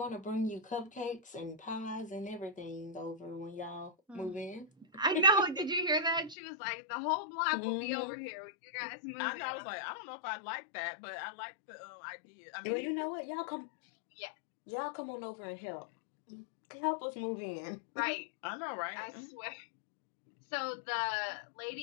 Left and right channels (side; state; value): right; drops out; at 6.4 s